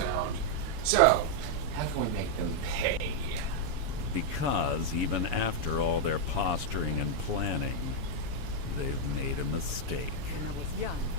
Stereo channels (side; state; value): left; late; 7.2 ms